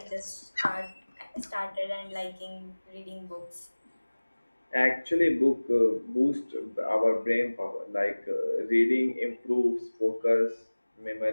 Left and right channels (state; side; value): inverted; both; correlation -1.00